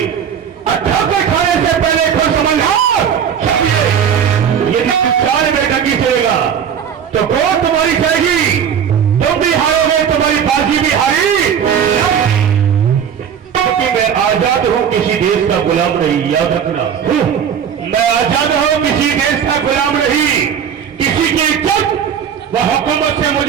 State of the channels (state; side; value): quieter; left; 8.0 dB